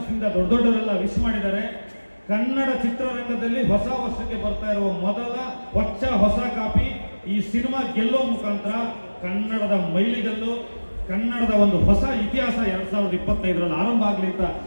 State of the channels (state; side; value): inverted; both; correlation -1.00